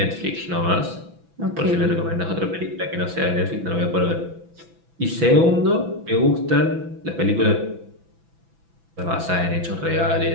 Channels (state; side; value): late; left; 6.0 ms